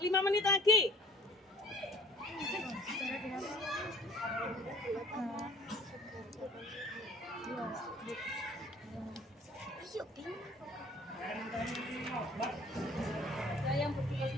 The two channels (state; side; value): normal; both; correlation 0.52